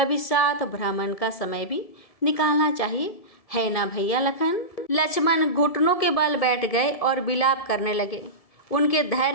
साथ भ्रमण का समय भी निकालना चाहिए, है ना भैया लखन। लक्ष्मण घुटनों के बल बैठ गए और विलाप करने लगे। उनके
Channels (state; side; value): late; right; 1.7 ms